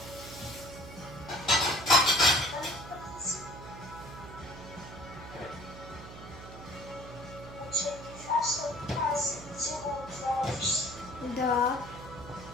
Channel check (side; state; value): right; noise; hum, 14 dB below the sound